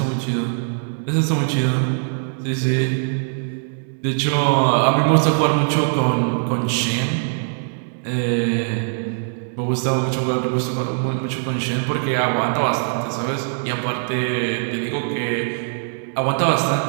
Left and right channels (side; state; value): left; silent; digital silence